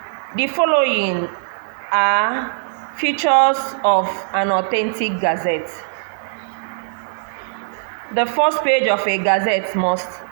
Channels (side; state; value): left; silent; digital silence